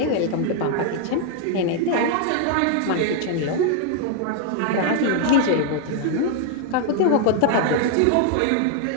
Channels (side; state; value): both; different; correlation 0.00